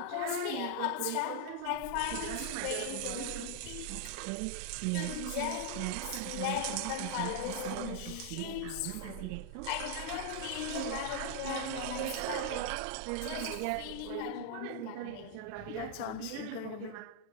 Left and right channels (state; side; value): different; both; correlation 0.00